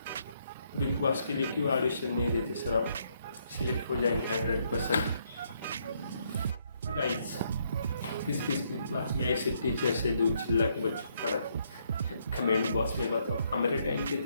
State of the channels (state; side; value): inverted; both; correlation -0.72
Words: बिग बॉस के लिए क्यों ऑडिशन नहीं देते सर? आप सिलेक्ट हो जाएंगे 100%। गाइस किस किस क्लास में ऐसे टीचर से दूध चिल्ला के बच्चों को पढ़ाते? कमेंट बॉक्स में बताओ। हमारे टाइम पे